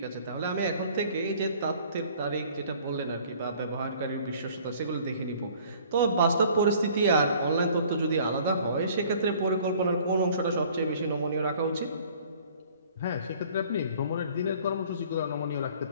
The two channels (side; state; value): both; inverted; correlation -0.53